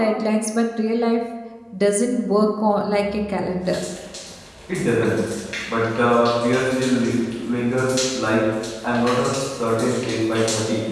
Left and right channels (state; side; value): identical; both; correlation 1.00